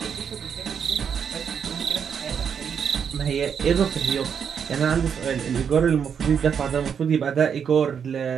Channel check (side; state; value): left; quieter; 7.3 dB